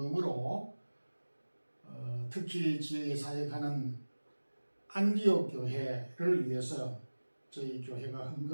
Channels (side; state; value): both; inverted; correlation -1.00